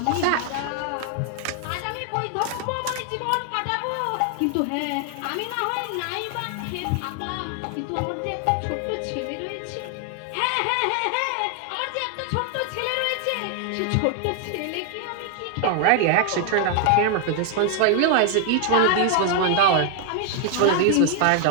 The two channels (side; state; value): both; different; correlation 0.00